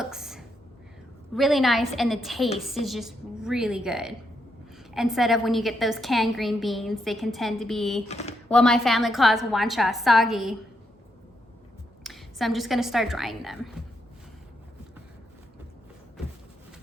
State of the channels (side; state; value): both; normal; correlation 0.79